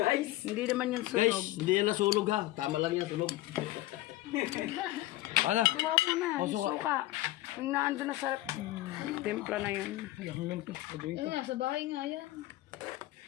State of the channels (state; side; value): quieter; right; 16.7 dB